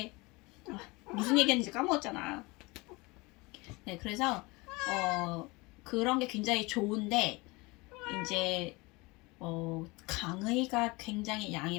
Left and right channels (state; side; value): quieter; right; 24.5 dB